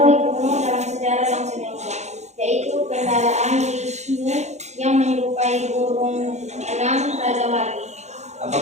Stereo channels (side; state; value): left; late; 0.33 ms